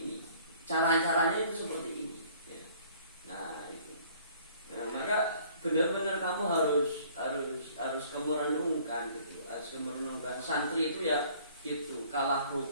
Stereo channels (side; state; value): both; inverted; correlation -0.56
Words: Cara-caranya itu seperti ini. Ya. Nah, itu. Nah, maka benar-benar kamu harus kamu renungkan gitu. Harus kamu renungkan. Santri itu ya gitu. Kalah